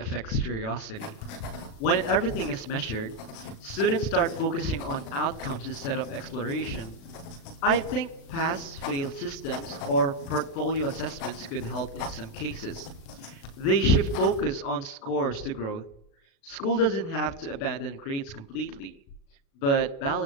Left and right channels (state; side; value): late; right; 36 ms